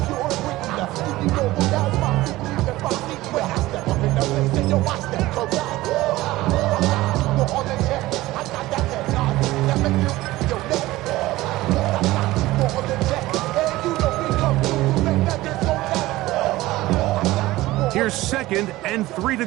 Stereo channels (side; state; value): left; quieter; 17.8 dB